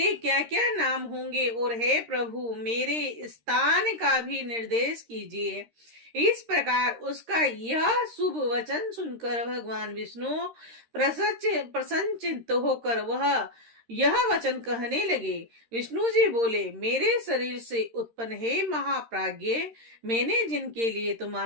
क्या क्या नाम होंगे और हे प्रभु, मेरे स्थान का भी निर्देश कीजिए। इस प्रकार उसका यह शुभ वचन सुनकर भगवान विष्णु प्रसन्नचित्त होकर वह यह वचन कहने लगे। विष्णु जी बोले, मेरे शरीर से उत्पन्न हे महाप्राज्ञ, मैंने जिनके लिए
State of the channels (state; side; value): late; left; 13 ms